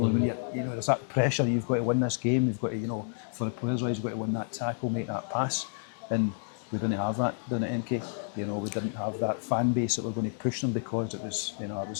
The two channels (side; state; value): right; silent; digital silence